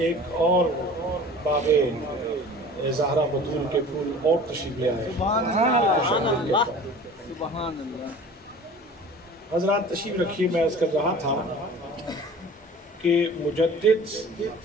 ایک اور باغ زہرا بطول کے پھول اور تشریف لے آئے۔ حضرات تشریف رکھیے، میں عرض کر رہا تھا کہ مجدد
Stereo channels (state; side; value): normal; both; correlation 0.42